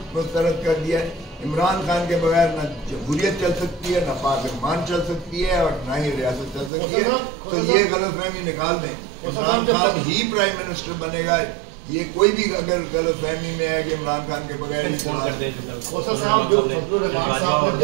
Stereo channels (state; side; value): drops out; left; at 6.7 s